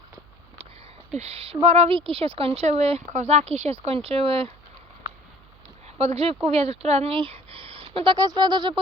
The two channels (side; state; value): right; noise; hum, 28 dB below the sound